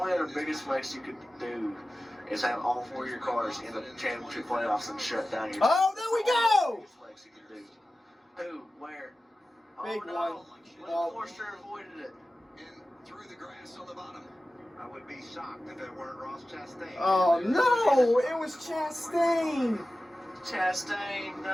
other biggest flex you could do is have all four of your cars in the championship playoffs and shut down your. Oh, there we go! Flex you could do. Who? Where? Big no. one. Forster avoided it. And through the grass on the bottom. I would be shocked if it weren't Ross Chastain. Oh no! It was Chastain. Chastain,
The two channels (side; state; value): both; normal; correlation 0.95